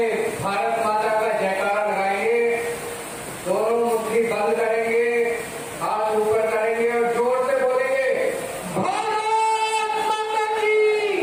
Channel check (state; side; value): identical; both; correlation 1.00